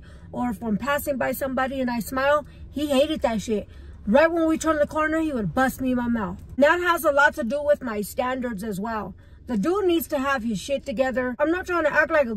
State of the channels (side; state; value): both; identical; correlation 1.00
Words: Or if I'm passing by somebody and I smile, he hated that shit. Right when we turn the corner, he would bust me in my mouth. That has a lot to do with my standards as well. The dude needs to have his shit together. I'm not trying to act like a